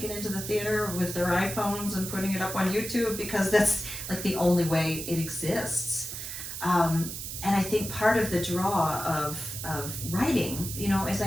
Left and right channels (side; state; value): right; noise; hiss, 7 dB below the sound